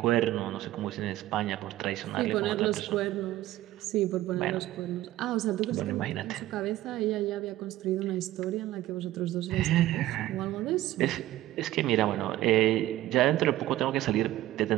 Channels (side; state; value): left; quieter; 15.2 dB